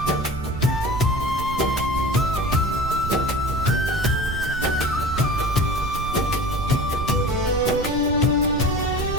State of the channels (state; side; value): noise; right; rumble, 7 dB below the sound